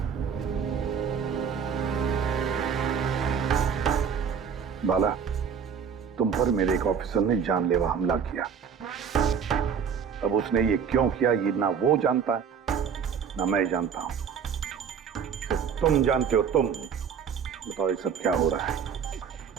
बाला, तुम पर मेरे एक ऑफिसर ने जानलेवा हमला किया। अब उसने ये क्यों किया, ये ना वो जानता है ना मैं जानता हूं। सिर्फ तुम जानते हो। तुम बताओ ये सब क्या हो रहा है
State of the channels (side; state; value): left; quieter; 7.0 dB